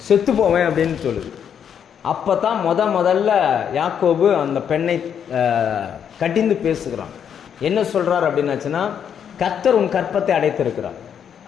செத்து போவேன் அப்படின்னு சொல்லுது. அப்போ தான் முதல்ல யாக்கோபு அந்த பெண்ணை கட்டிந்து பேசுகிறான். என்ன சொல்கிறார் அப்படின்னாச்சுன்னா, கர்த்தர் உன் கற்பத்தை அடைத்திருக்கிறார்.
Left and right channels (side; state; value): right; quieter; 8.3 dB